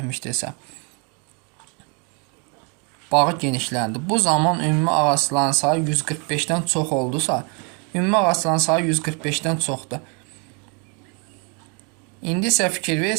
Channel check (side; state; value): left; quieter; 34.9 dB